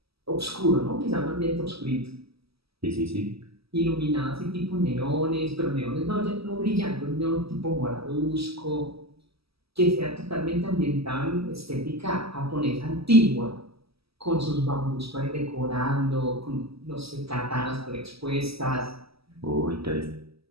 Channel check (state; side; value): late; left; 0.76 ms